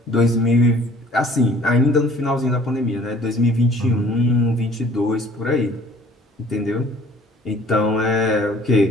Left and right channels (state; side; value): normal; both; correlation 0.53